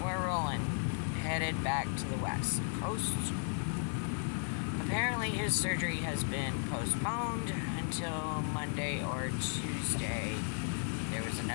we're rolling. Headed back to the West Coast. Apparently his surgery has been postponed until Monday or Tuesday. There was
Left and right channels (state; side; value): silent; right; 54 dB below the other